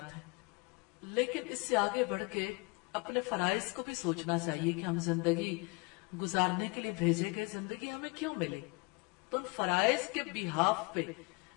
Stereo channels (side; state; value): right; quieter; 28.8 dB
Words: ہیں، لیکن اس سے آگے بڑھ کے اپنے فرائض کو بھی سوچنا چاہیے کہ ہم زندگی گزارنے کے لیے بھیجے گئے، زندگی ہمیں کیوں ملے۔ تو ان فرائض کے بیہاف پہ